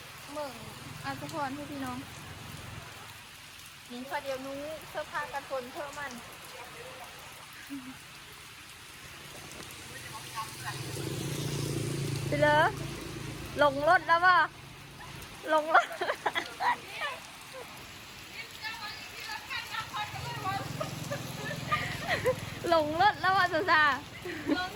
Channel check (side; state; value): both; identical; correlation 1.00